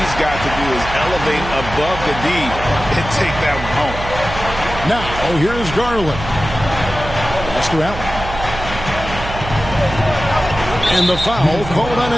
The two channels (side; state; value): right; noise; hum, 9 dB below the sound